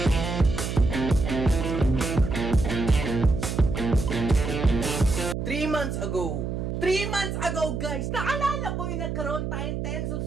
months ago, guys, naalala ko yung nagkaroon tayong 10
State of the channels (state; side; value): noise; right; hum, 3 dB below the sound